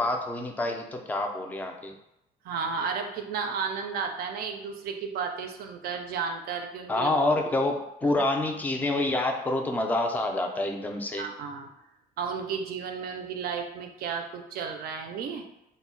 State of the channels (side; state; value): both; normal; correlation 0.48